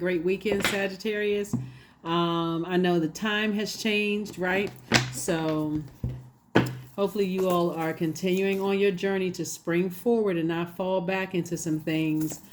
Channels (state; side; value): identical; both; correlation 1.00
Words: weekend, Sagittarius. I know the time has changed, right? So, hopefully, you all are continuing on your journey to spring forward and not fall back into some things